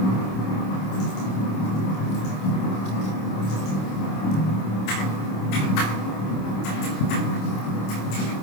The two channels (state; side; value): late; right; 26 ms